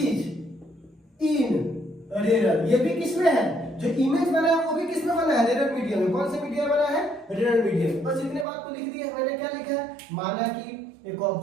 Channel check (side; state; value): left; drops out; at 8.5 s